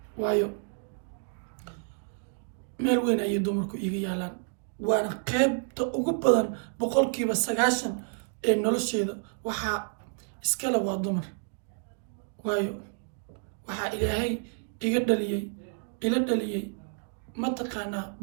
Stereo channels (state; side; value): silent; left; 58 dB below the other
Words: waayo meel weyn ayay dumarku iga yaalaan waana qaybta ugu badan 90% ee nolosheeda waxaa iskale waa dumar waayo waxaa ilaahay ila dhaliyay mataqaanaa